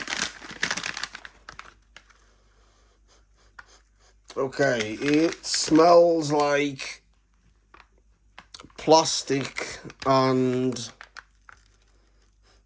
Okay, it smells like plastic and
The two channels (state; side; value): identical; both; correlation 1.00